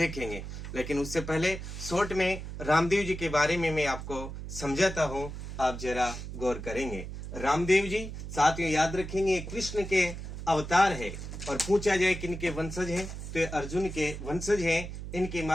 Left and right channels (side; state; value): right; noise; hum, 8 dB below the sound